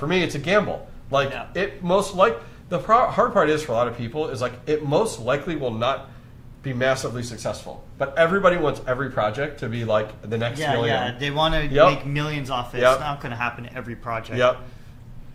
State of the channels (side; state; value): both; identical; correlation 1.00